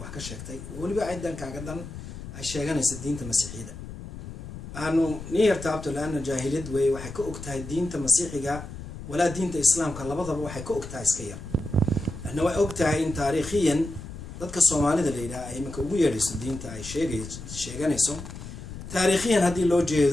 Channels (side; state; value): left; noise; rumble, 11 dB below the sound